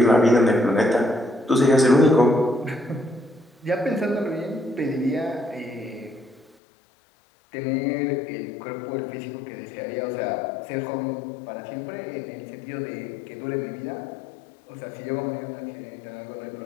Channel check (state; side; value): drops out; right; at 6.6 s